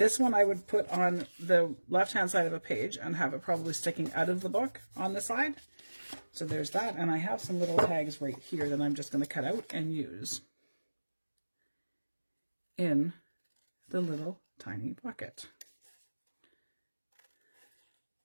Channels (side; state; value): both; inverted; correlation -1.00